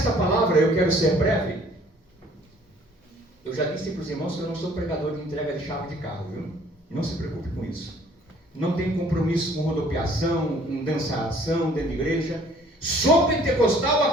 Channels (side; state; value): both; normal; correlation 0.57